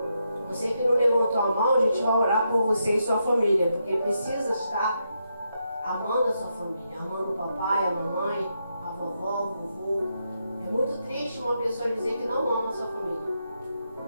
Você que não levantou a mão, a gente vai orar por você e sua família, porque precisa estar amando a sua família, amando o papai, a mamãe, a vovó, o vovô. É muito triste uma pessoa dizer que não ama a sua família.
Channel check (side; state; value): both; inverted; correlation -0.82